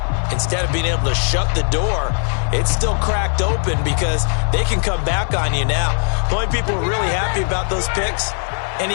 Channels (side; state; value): right; silent; 63 dB below the other